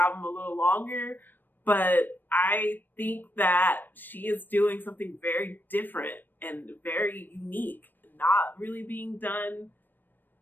a little longer, but I think that she is doing something very different and very unique, not really being done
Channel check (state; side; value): late; right; 0.092 ms